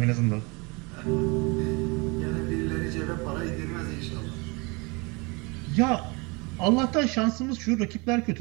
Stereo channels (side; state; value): left; quieter; 28.4 dB